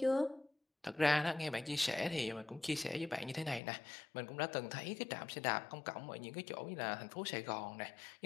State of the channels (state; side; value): drops out; right; at 3.6 s